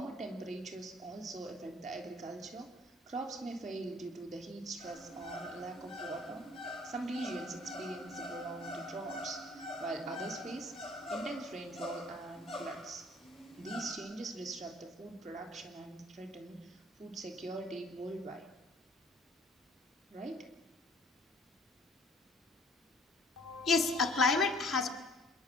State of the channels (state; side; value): normal; both; correlation 0.56